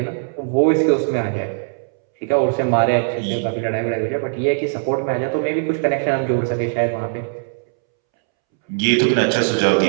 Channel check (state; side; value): silent; left; 66 dB below the other